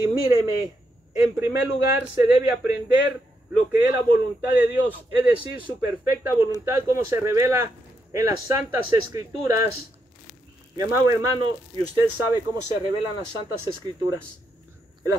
míreme, en primer lugar se debe aprender lo que es la voluntad de Dios, es decir, su perfecta voluntad, como se revela en las Santas Escrituras. Mi amado hermano, y usted sabe cómo se revelan las Santas Escrituras. El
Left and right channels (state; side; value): normal; both; correlation 0.81